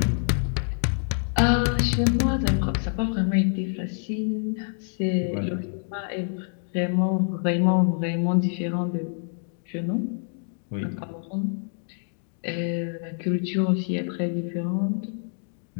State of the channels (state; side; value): silent; right; 61 dB below the other